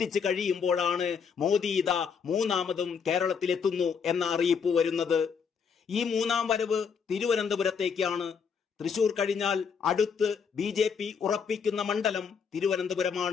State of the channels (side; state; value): right; quieter; 6.4 dB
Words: കഴിയുമ്പോഴാണ് മോദി ഇതാ 3ാമതും കേരളത്തിലെത്തുന്നു എന്ന അറിയിപ്പ് വരുന്നത്. ഈ 3ാം വരവ് തിരുവനന്തപുരത്തേക്കാണ്. തൃശൂർ കഴിഞ്ഞാൽ അടുത്ത് BJP ഉറപ്പിക്കുന്ന മണ്ഡലം